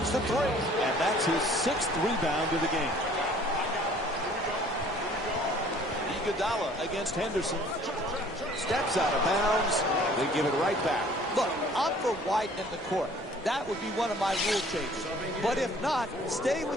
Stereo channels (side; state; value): both; normal; correlation 0.54